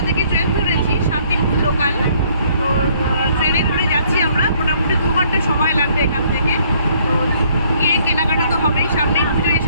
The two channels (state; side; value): inverted; both; correlation -0.63